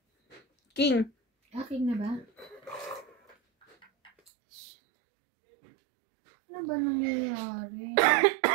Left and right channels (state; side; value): drops out; left; at 4.1 s